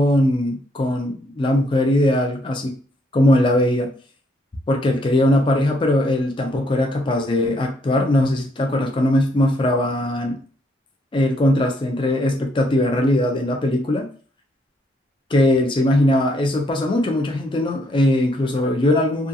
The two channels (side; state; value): both; normal; correlation 0.71